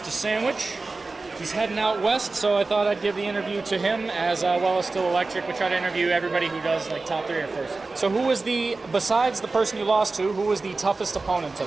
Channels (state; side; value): quieter; left; 3.6 dB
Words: Sandwich. He's heading out west, so I thought I'd give the interview to him as well as Still Electric. We try to interview everybody who does like top 3 or first. So who was besides the person you lost to, who was the toughest opponent